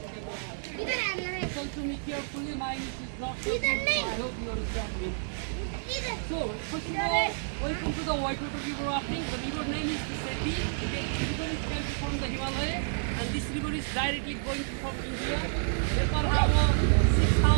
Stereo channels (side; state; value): left; silent; 58 dB below the other